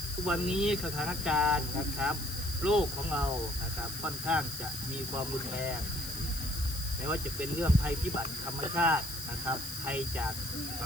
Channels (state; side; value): noise; left; hiss, 8 dB below the sound